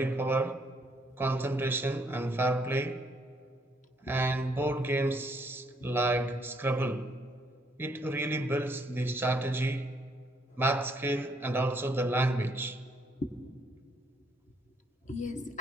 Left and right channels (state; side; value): normal; both; correlation 0.70